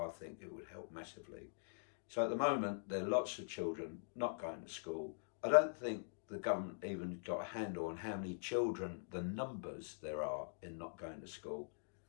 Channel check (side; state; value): right; silent; digital silence